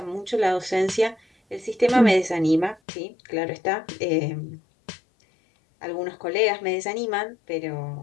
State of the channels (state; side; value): drops out; right; at 2.8 s